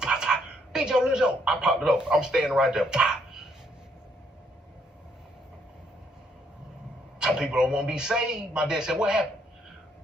Pop, pop. Big Joe, Lil Joe. I popped it up. I'm standing right there. Pop. Some people don't want to be saved. My dad said, what happened?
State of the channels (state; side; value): normal; both; correlation 0.70